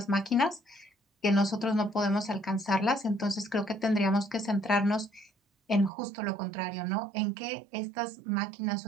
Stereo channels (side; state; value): left; drops out; at 5.9 s